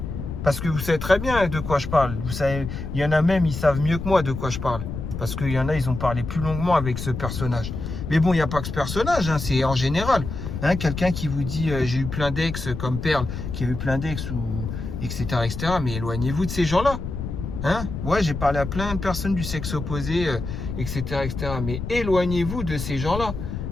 Parce que vous savez très bien de quoi je parle. Vous savez, il y en a même, ils savent mieux que moi de quoi je parle. Parce qu'il y en a, ils ont parlé plus longuement avec ce personnage. Mais bon, il n'y a pas que ce personnage. Hein, c'est en général. Hein, quelqu'un qui vous dit, j'ai eu plein d'ex comme Perle, qui a eu plein d'ex, ou etc., etc. Mais éloignez-vous de ces gens-là. Hein? Ouais, j'ai parlé à plein de personnes du sexe opposé, etc., etc. Mais éloignez-vous de ces gens-là.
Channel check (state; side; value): noise; left; rumble, 6 dB below the sound